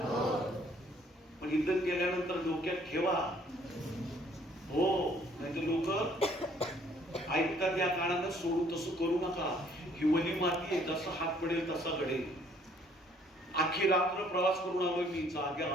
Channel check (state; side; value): normal; both; correlation 0.62